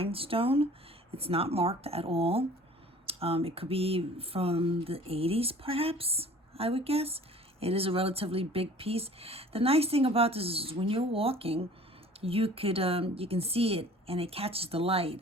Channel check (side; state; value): both; normal; correlation 0.48